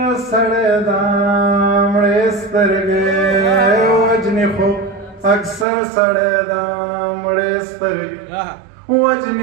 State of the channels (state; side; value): drops out; left; at 5.7 s